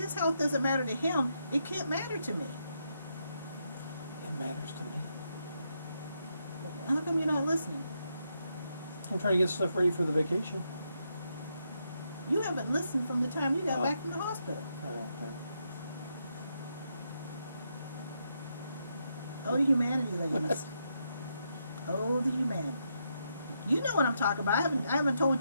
health doesn't matter to him, it can't matter to me. It matters to me. How come you're not listening? I'm trying to get stuff ready for the vacation. You haven't listened from the time you got back from the hospital. Okay. Oh, the humanity, ladies. Oh, the humanity. You know what I'm talking about. I haven't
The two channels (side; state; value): both; inverted; correlation -0.80